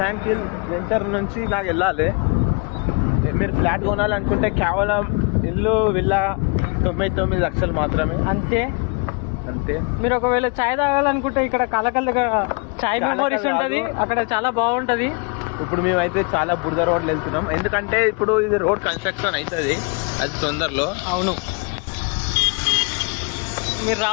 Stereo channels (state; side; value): quieter; right; 33.8 dB